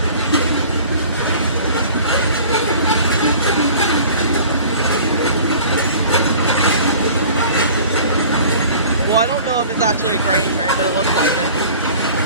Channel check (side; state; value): both; inverted; correlation -0.46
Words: Well, I don't know if it's actually a grain train, but it looks like it.